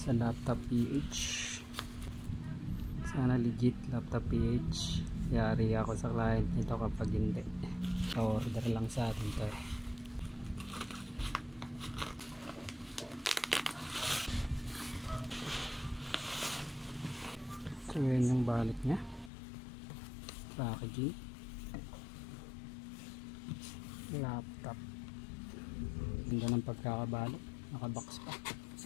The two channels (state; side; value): drops out; right; at 19.3 s